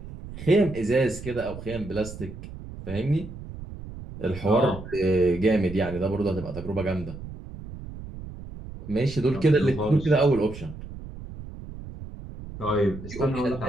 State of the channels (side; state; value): right; noise; rumble, 12 dB below the sound